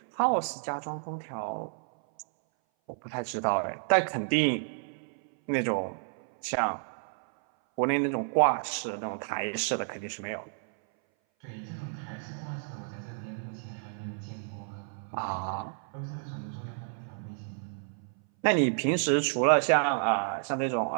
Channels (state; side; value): silent; left; 57 dB below the other